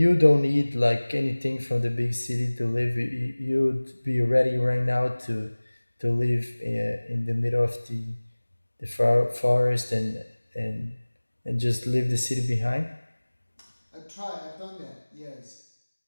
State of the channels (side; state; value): both; inverted; correlation -1.00